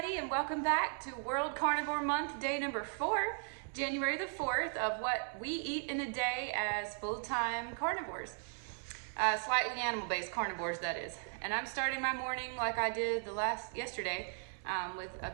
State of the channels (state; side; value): silent; left; 53 dB below the other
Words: and welcome back to World Carnivore Month, day number 4, January the 4th, of what we eat in a day as full-time carnivores. Slightly animal-based carnivores, that is. And I'm starting my morning like I did yesterday with a